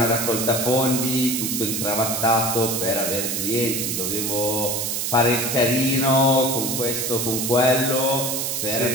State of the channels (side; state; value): right; noise; hiss, 1 dB below the sound